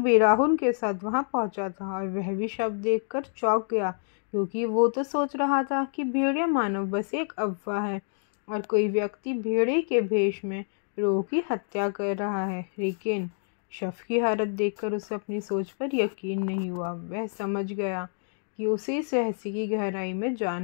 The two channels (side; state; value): right; silent; digital silence